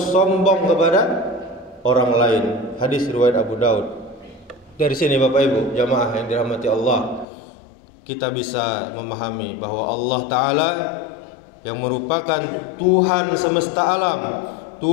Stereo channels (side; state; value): right; drops out; at 7.2 s